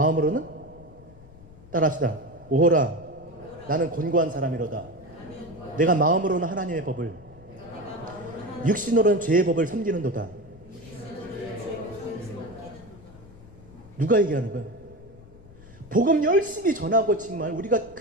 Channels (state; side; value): noise; left; rumble, 21 dB below the sound